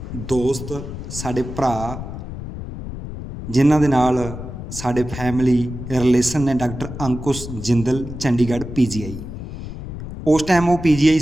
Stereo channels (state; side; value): noise; left; rumble, 9 dB below the sound